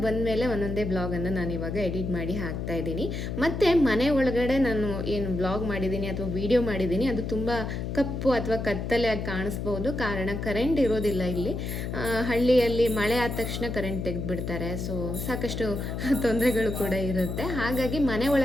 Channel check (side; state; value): left; noise; hum, 4 dB below the sound